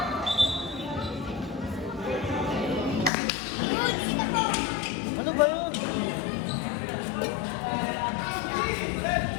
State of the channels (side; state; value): right; drops out; at 3.1 s